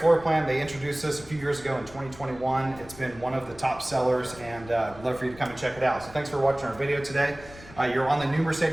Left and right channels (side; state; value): left; noise; rumble, 19 dB below the sound